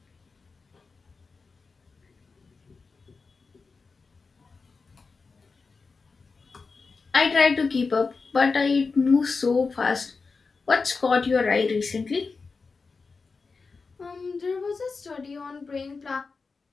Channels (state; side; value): quieter; right; 4.5 dB